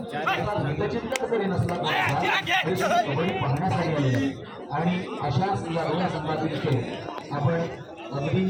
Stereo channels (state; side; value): identical; both; correlation 1.00